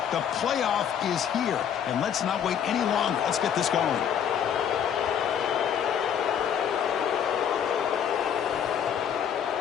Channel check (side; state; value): right; quieter; 8.6 dB